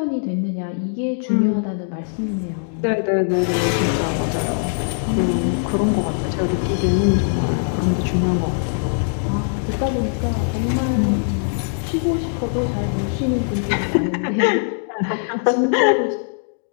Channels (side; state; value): right; silent; digital silence